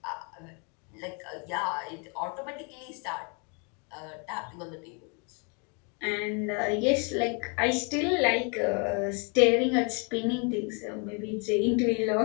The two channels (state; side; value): quieter; right; 35.8 dB